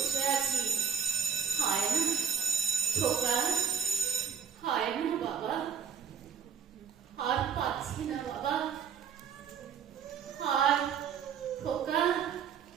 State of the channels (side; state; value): left; quieter; 7.1 dB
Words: আছি, হয় না। খোকা, হয় না বাবা, আর পাচ্ছি না বাবা, আর খোকা,